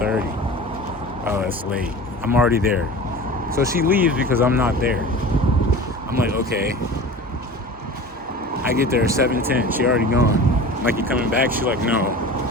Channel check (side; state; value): both; normal; correlation 0.37